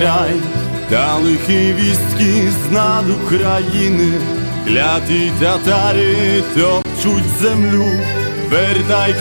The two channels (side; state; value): both; inverted; correlation -1.00